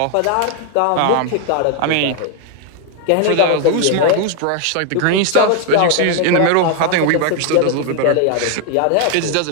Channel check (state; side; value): different; both; correlation 0.00